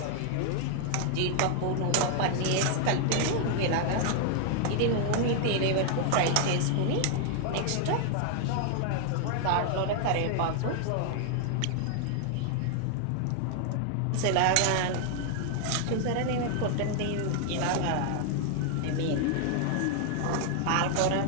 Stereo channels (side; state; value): both; different; correlation 0.00